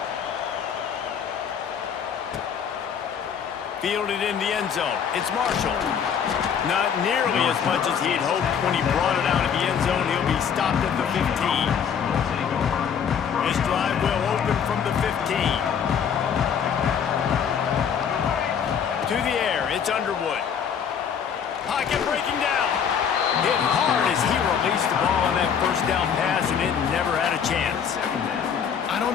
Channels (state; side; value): quieter; right; 7.6 dB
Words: Fielded in the end zone. It's Marshall. Not nearly as much as he'd hoped when he brought it out of the end zone. He'll be stopped at the 15. This drive will open from the 15. To the air, it's Underwood. Pocket breaking down. Hit hard as he released the ball on that first down pass, and it never had a chance. I don't